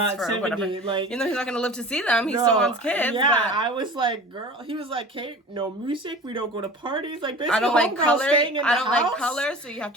for 70. Whatever. Like, you know, he's not gonna live to see them. He still wants kids. Yeah, but I was like, girl. He was like, Kate, no music. We don't go to parties. Like, basically, I don't like color. I don't like color, so you have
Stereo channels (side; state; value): both; normal; correlation 0.39